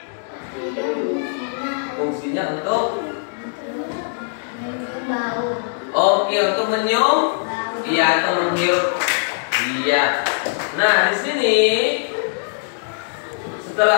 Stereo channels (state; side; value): silent; right; digital silence